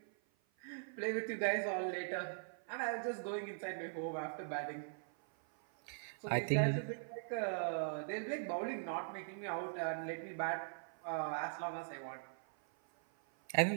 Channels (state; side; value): silent; left; 50 dB below the other